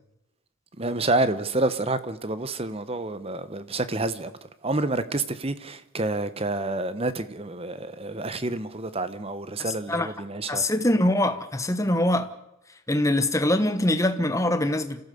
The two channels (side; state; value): both; normal; correlation 0.53